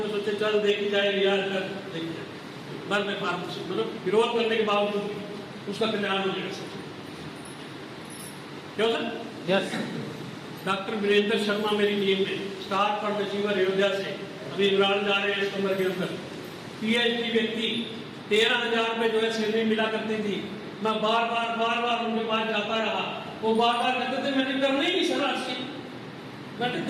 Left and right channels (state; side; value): identical; both; correlation 1.00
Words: को सोचे चल देखी जाए यार, कर देखी जाए, बस मैं मतलब विरोध करने के बावजूद उसका कल्याण हो जाएगा सर। क्यों sir? Yes. Doctor Virendra Sharma मेरी टीम में, स्टार फंड अचीवर अयोध्या से, अभी इमरान जा रहे हैं इस कमर के अंदर। पीएचडी व्यक्ति, 13,000 रुपये जो है सैलरी मिला करती थी। मैं बार बार उनके पास जाता रहा, वो बार कहते थे मैंने करना ही नहीं सर आज से, मैंने